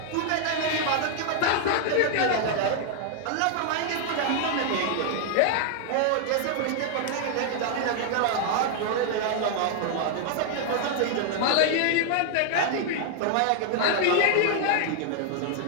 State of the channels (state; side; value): different; both; correlation 0.00